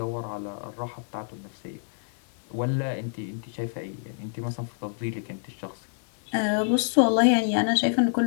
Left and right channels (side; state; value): right; silent; 57 dB below the other